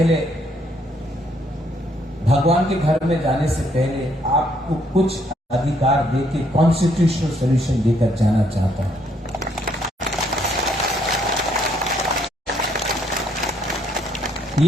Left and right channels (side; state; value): both; normal; correlation 0.69